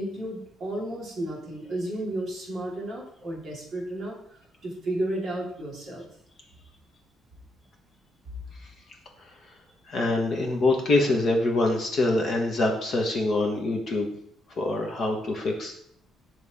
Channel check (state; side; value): normal; both; correlation 0.80